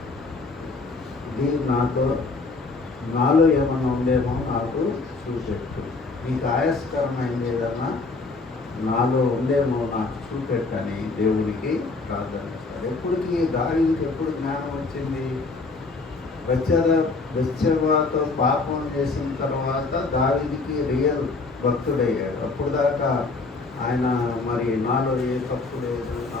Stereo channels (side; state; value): right; quieter; 3.8 dB